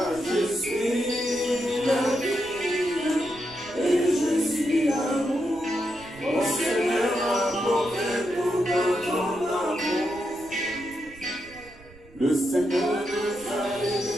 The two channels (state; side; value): noise; right; rumble, 23 dB below the sound